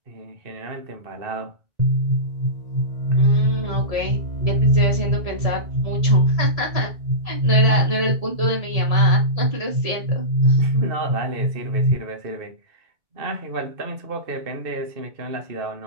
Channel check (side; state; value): left; late; 1.8 ms